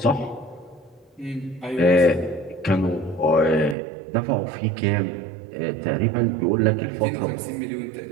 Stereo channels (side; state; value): left; drops out; at 3.8 s